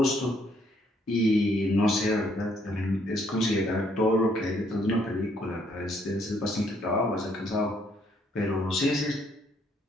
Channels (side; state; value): both; normal; correlation 0.69